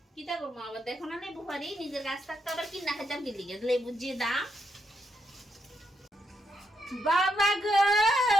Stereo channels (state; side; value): normal; both; correlation 0.80